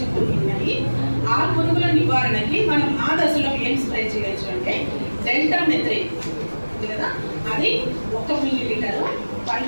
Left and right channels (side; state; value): both; inverted; correlation -1.00